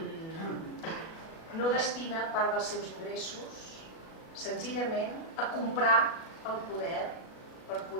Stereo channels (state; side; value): late; right; 37 ms